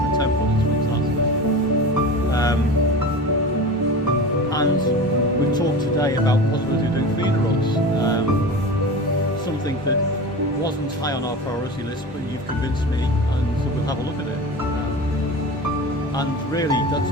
10-foot, it's fantastic. And we've talked today about the possibility of doing feeder rods, something that wasn't high on our priority list, but you've convinced me, and so we'll have a look at it. And really, that's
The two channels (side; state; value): both; normal; correlation 0.31